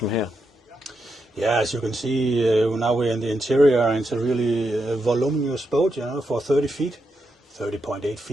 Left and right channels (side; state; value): both; normal; correlation 0.84